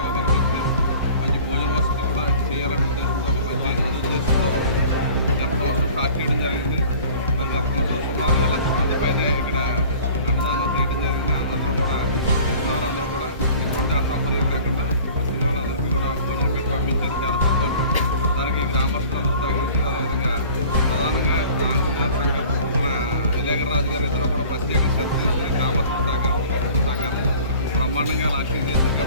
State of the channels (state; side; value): inverted; both; correlation -0.46